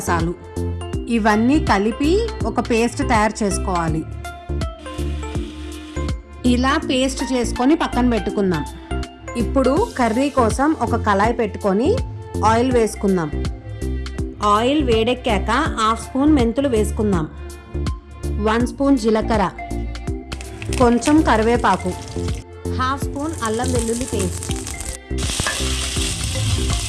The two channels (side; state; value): both; identical; correlation 1.00